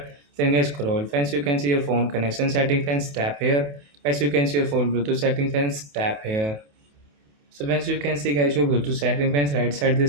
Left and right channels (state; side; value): late; left; 28 ms